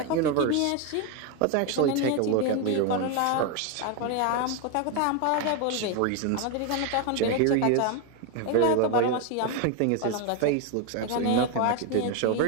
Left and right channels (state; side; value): different; both; correlation 0.02